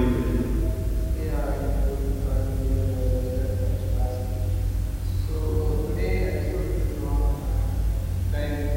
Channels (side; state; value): both; identical; correlation 1.00